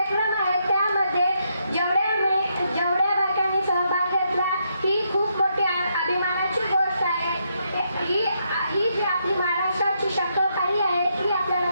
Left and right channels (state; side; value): inverted; both; correlation -0.78